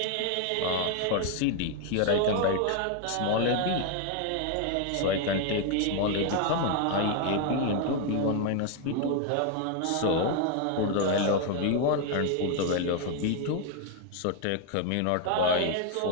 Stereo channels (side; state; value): both; different; correlation 0.01